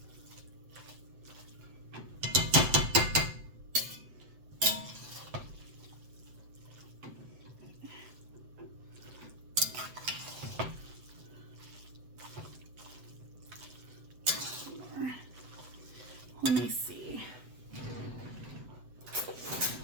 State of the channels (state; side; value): late; left; 7.8 ms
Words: Let me see.